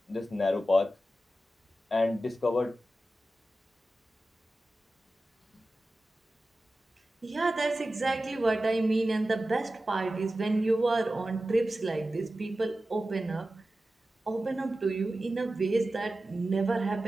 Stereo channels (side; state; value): both; normal; correlation 0.94